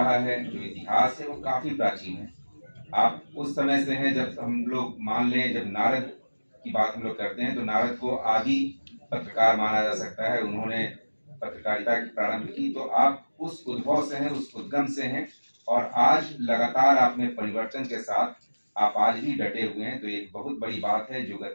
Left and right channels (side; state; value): both; inverted; correlation -1.00